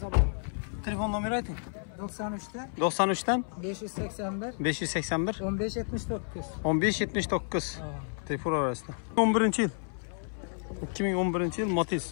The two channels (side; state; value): right; silent; 57 dB below the other